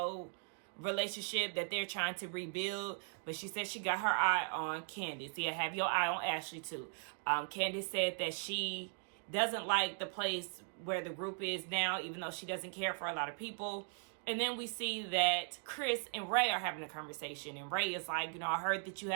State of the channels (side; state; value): left; silent; 52 dB below the other